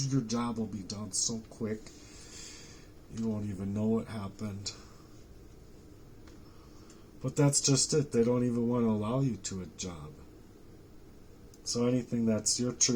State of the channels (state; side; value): identical; both; correlation 1.00